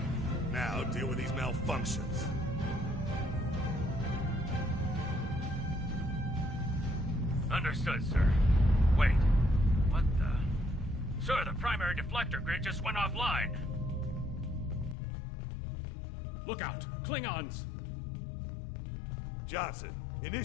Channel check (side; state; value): right; drops out; at 15.0 s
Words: Now deal with these malfunctions. Understood, sir. Wait. What the... Sir, the primary deflector grid just went offline. Look out! Klingons! Johnson,